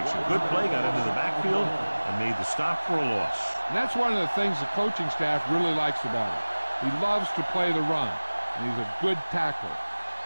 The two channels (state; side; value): inverted; both; correlation -1.00